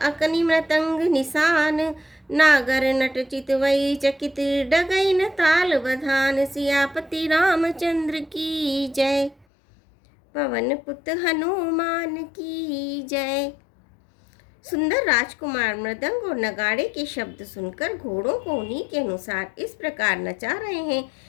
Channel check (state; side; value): drops out; right; at 9.5 s